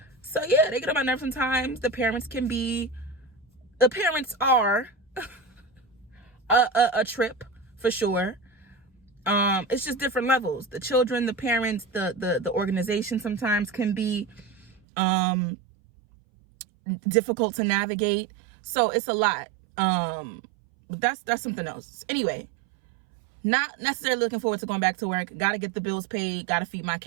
yeah, they get on my nerves sometimes. The parents are a trip for sure. It's just different levels. The children, the parents, the organization sometimes can be difficult to navigate. So it's a lot. But that's something else. Anyway, not necessarily looking forward to going back to work. Got to get the bills paid. Got to feed my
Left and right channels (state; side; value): drops out; left; at 14.8 s